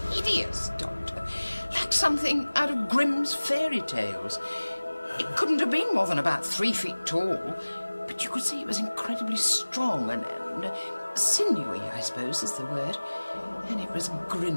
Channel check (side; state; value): both; inverted; correlation -1.00